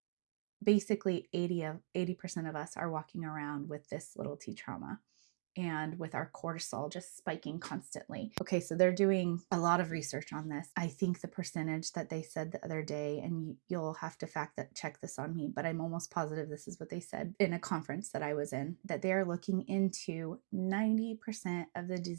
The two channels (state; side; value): silent; left; digital silence